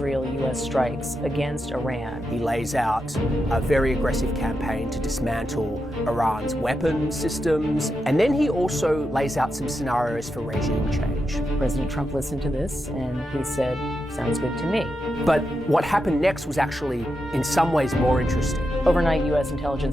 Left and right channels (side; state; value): both; normal; correlation 0.87